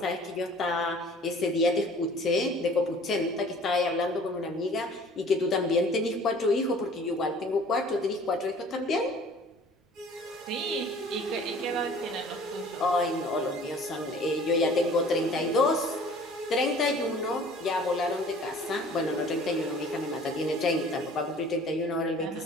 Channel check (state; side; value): normal; both; correlation 0.50